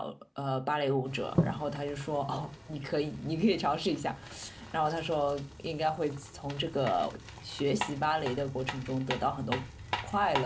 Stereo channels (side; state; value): both; identical; correlation 1.00